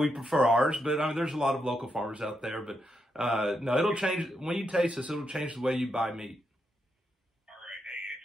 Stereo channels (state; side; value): normal; both; correlation 0.82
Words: prefer ours, but I mean, there's a lot of local farmers out there. But no, it'll change. When you taste this, it'll change the way you buy meat.